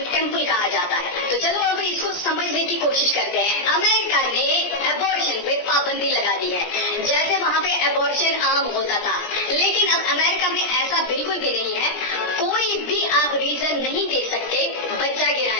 टेम्पल कहा जाता है। तो चलो अब इसको समझने की कोशिश करते हैं। अमेरिका ने एबॉर्शन पे पाबंदी लगा दी है। जैसे वहाँ पे एबॉर्शन आम होता था, लेकिन अब अमेरिका में ऐसा बिल्कुल भी नहीं है। कोई भी आप रीजन नहीं दे सकते बच्चा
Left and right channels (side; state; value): right; late; 17 ms